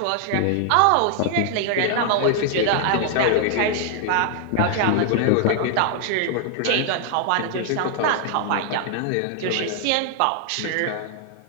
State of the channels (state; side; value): different; both; correlation 0.00